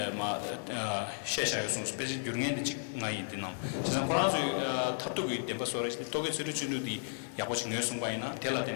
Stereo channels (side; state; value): right; silent; 55 dB below the other